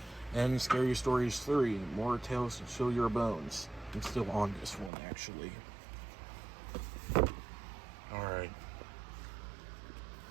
And Scary Stories 3, More Tales to Chill Your Bones. I'm still on this one, actually. Alright.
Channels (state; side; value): drops out; left; at 4.9 s